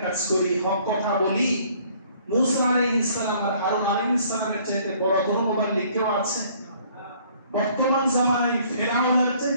কাজ করি হক কথা বলি মুসা আলাইহিস সালাম আর হারুন আলাইহিস সালামের চাইতে বড় মুবাল্লিগ কেউ আছে বর্তমান জামানায় ফেরাউনের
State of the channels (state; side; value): inverted; both; correlation -0.59